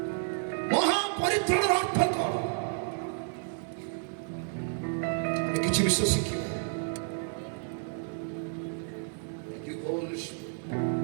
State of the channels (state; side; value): silent; left; 57 dB below the other